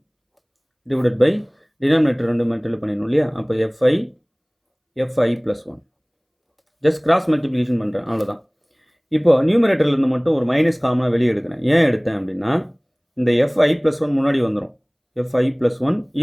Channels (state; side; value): identical; both; correlation 1.00